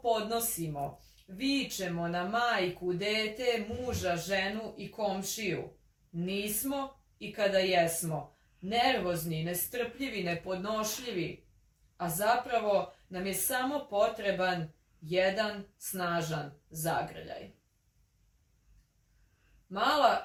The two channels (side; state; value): both; identical; correlation 1.00